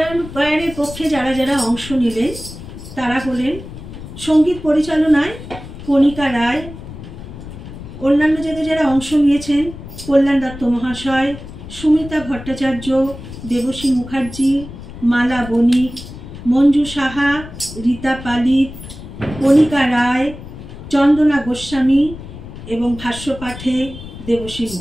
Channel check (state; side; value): noise; left; rumble, 13 dB below the sound